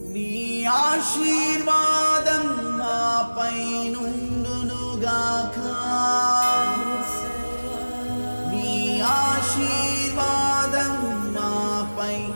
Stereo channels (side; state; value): both; inverted; correlation -1.00